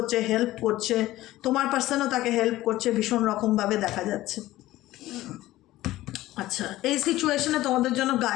হেল্প করছে। তোমার পার্সনও তাকে হেল্প করছে ভীষণ রকমভাবে দেখা যাচ্ছে। আচ্ছা, এই সিচুয়েশনে তোমাদের জন্য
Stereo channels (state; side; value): quieter; right; 16.2 dB